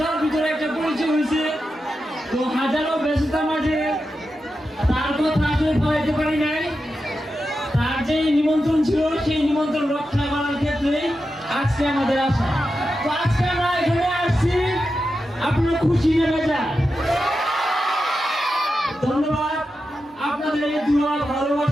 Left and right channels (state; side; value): normal; both; correlation 0.90